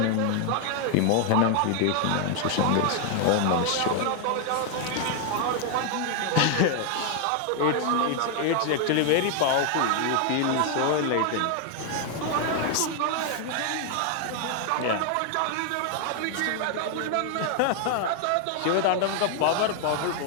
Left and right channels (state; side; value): different; both; correlation 0.00